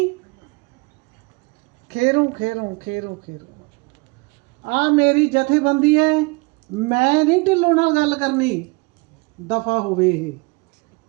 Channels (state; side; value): quieter; left; 28.0 dB